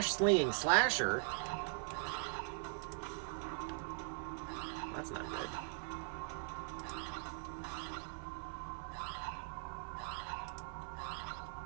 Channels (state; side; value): silent; left; 50 dB below the other